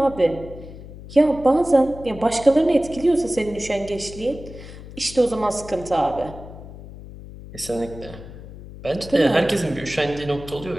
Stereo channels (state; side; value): noise; left; hum, 15 dB below the sound